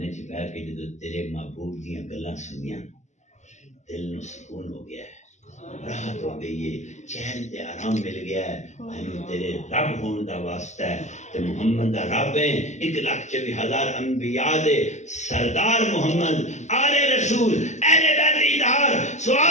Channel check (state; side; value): late; right; 0.34 ms